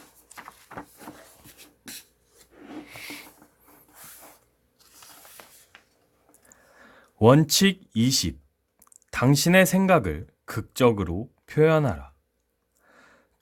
원칙 20. 당신의 생각을 극적으로 표현하라.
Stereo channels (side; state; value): both; identical; correlation 1.00